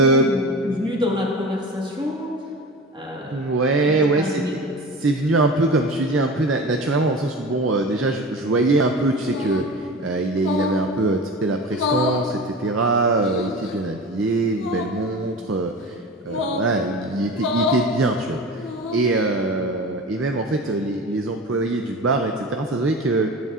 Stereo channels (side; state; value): both; normal; correlation 0.32